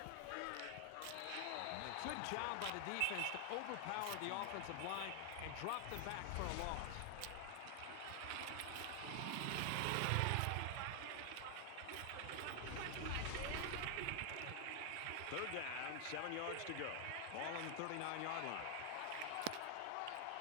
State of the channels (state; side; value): different; both; correlation 0.00